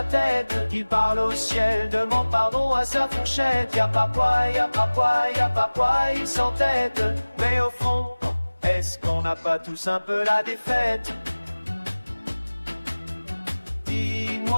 tête. Il parle au ciel, demande pardon à sa fourchette. Y'a pas poil, y'a pas poil, y'a pas poil, il s'entête. Mais au fond, est-ce qu'on n'a pas tous un peu la défaite?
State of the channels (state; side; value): inverted; both; correlation -1.00